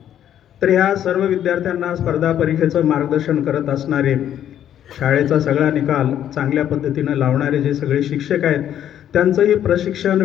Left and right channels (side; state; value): right; quieter; 10.5 dB